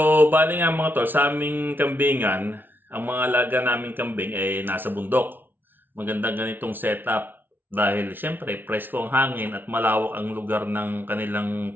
bali nga mga tol, sa aming kambingan, ang mga alaga naming kambing ay nasa bundok. Magandang ganitong setup dahil syempre presko ang hangin at malawak ang lugar ng kanilang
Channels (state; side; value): late; left; 0.096 ms